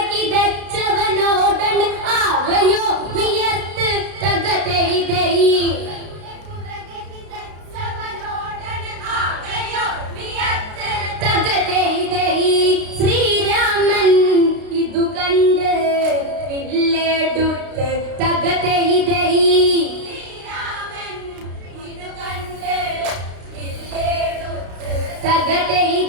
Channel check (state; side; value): late; left; 32 ms